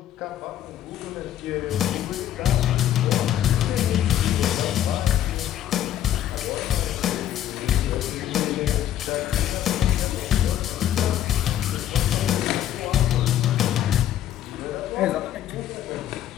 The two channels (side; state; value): right; quieter; 11.5 dB